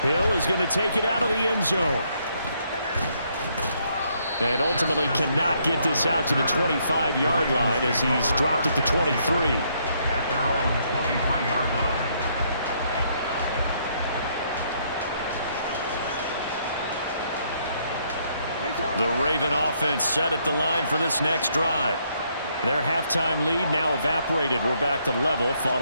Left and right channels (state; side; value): inverted; both; correlation -0.71